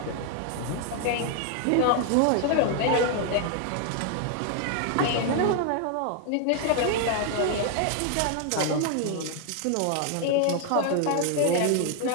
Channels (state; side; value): different; both; correlation 0.00